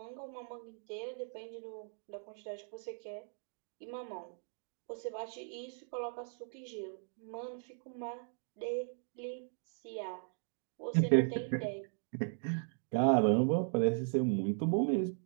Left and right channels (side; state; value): left; silent; digital silence